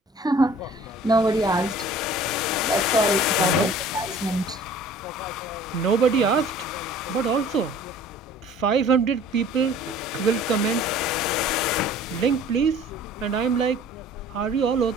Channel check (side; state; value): both; normal; correlation 0.49